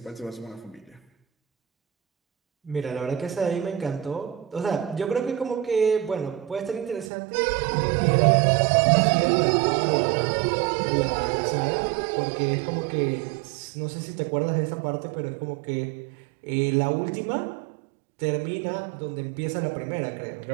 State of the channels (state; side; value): drops out; left; at 7.1 s